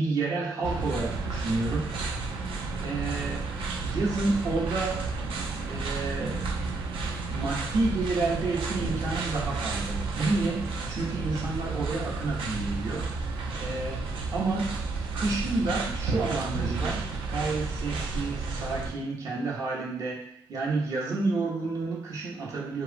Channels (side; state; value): left; quieter; 3.1 dB